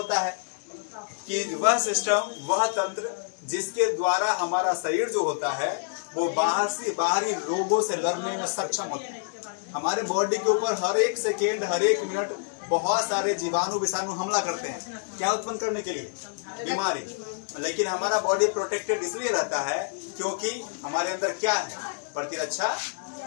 है कि वह सिस्टम, वह तंत्र जिसके द्वारा हमारा शरीर जो होता है वो बाहरी रोगों से लड़ने में सक्षम होता है। हमारे बॉडी के ऊपर हर एक सेकेंड, हर एक मिनट बहुत सारे जीवाणु विषाणु हमला करते हैं, क्या उत्पन्न करने के लिए? बीमारी। लेकिन हमारा बॉडी प्रोटेक्टेड इसलिए रहता है क्योंकि हमारे अंदर क्या है? प्रतिरक्षा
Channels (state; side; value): silent; right; digital silence